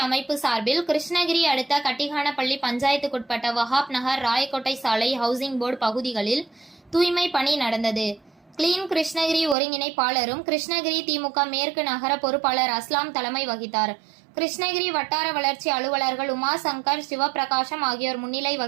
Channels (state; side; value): drops out; left; at 9.6 s